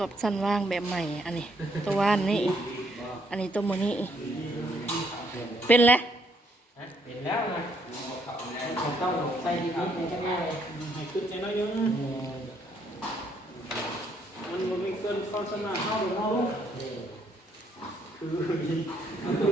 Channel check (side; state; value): both; normal; correlation 0.70